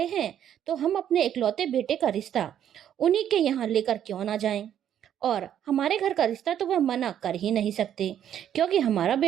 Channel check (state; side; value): quieter; left; 10.0 dB